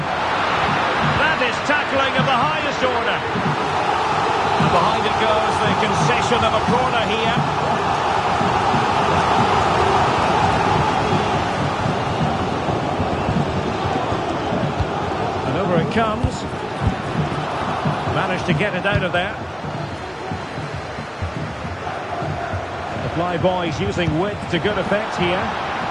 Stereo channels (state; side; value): identical; both; correlation 1.00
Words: That is tackling of the highest order. And behind it goes the concession of a corner here. managed to get it out of there. The fly boys using width to good effect here,